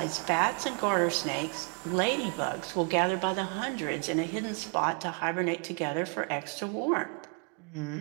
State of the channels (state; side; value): quieter; left; 38.8 dB